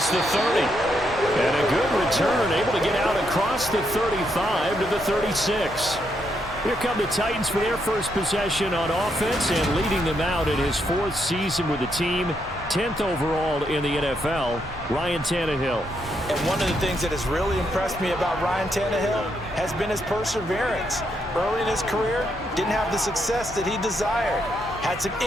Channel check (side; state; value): both; normal; correlation 0.78